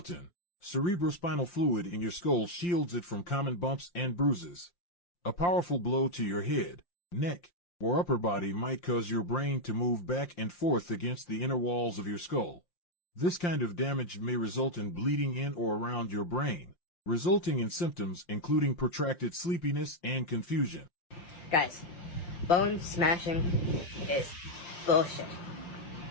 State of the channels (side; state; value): right; late; 5.7 ms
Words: Cerebrospinal fluid in your skull shields it from common bumps and bruises. A powerful blow to your head, neck, or upper body might cause your brain to move back and forth against the inner walls of your skull. This kind of damage may result in bleeding in or around your brain, resulting in symptoms including protracted sleepiness and confusion. Guys, bone smashing is bullshit.